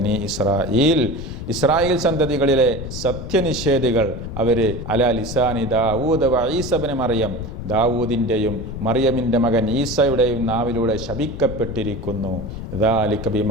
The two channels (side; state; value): left; noise; rumble, 8 dB below the sound